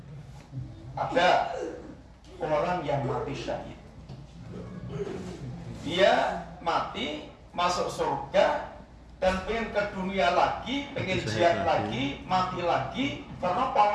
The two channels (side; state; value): both; identical; correlation 1.00